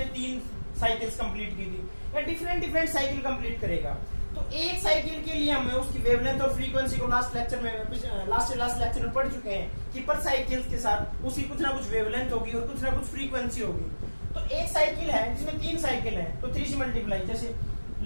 3 साइकिल्स कंप्लीट की थी, या डिफरेंट साइकिल कंप्लीट करेगा। तो एक साइकिल के लिए हमें उसकी वेवलेंथ और फ्रीक्वेंसी को लास्ट लेक्चर में पढ़ चुके हैं कि पर साइकिल के साथ उसकी कुछ ना कुछ वेवलेंथ होगी और कुछ ना कुछ फ्रीक्वेंसी होगी। तो एक साइकिल है जिसमें 3 साइकिल है तो 3 से मल्टीप्लाई, जैसे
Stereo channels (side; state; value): both; inverted; correlation -1.00